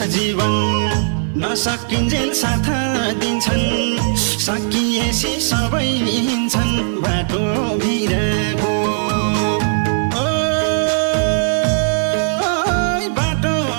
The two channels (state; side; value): silent; left; digital silence